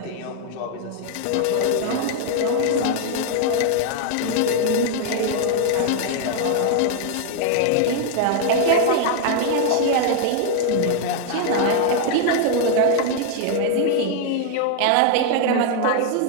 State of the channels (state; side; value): different; both; correlation 0.00